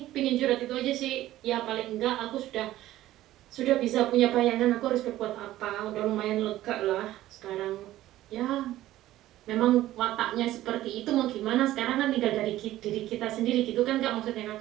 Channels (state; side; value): quieter; left; 14.8 dB